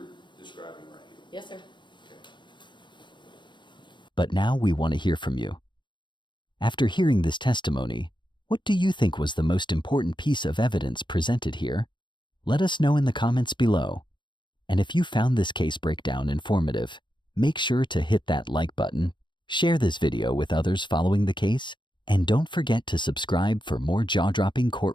describing right here? Yes, sir. Okay. But now we want to hear from you. After hearing this testimony, what do you think was the most important piece of evidence presented here? Let us know in the comments below. And if you found this case breakdown informative, make sure to hit that like button, share this video with others following the case, and don't forget to subscribe for more jaw-dropping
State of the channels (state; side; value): late; right; 0.23 ms